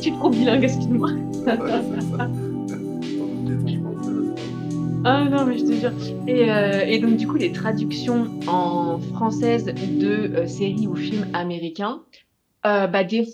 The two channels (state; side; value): identical; both; correlation 1.00